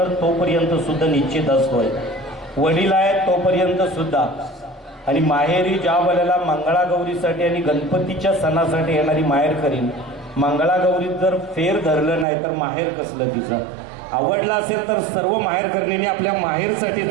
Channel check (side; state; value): left; drops out; at 12.2 s